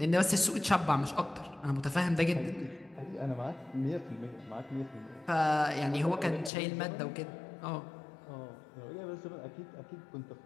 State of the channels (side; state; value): right; drops out; at 6.5 s